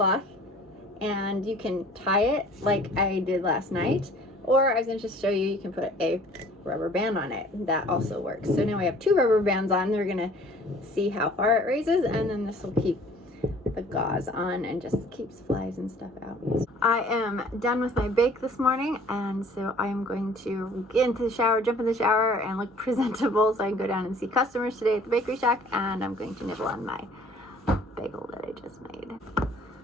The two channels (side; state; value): both; normal; correlation 0.52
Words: and you can tie it like I did last night, or I was going to just show you, you can put a rubber band on it. That also works. So now we have 2 rubber bands on. We're going to see how far it raises, and then this will keep the gauze on and just keeps flies and stuff out. I am done with my bake this morning, and so I am going to get into the shower, jump in the shower, and look presentable so I can go down and see customers today at the bakery shack, and I'm going to nibble on my bagel that I just made.